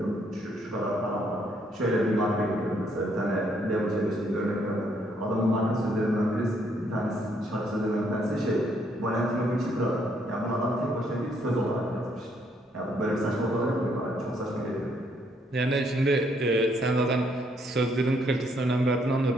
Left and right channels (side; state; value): both; normal; correlation 0.70